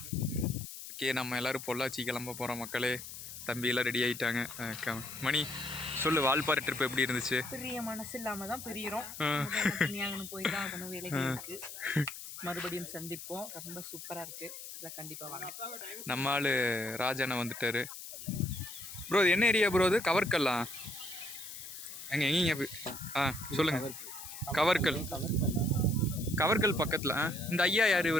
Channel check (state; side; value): noise; left; hiss, 11 dB below the sound